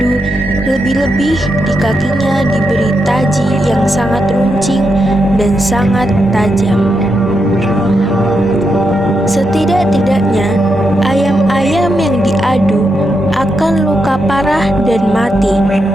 lebih-lebih di kakinya diberi taji yang sangat runcing dan sangat tajam. Setidak-tidaknya ayam-ayam yang diadu akan luka parah dan mati.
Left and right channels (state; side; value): normal; both; correlation 0.84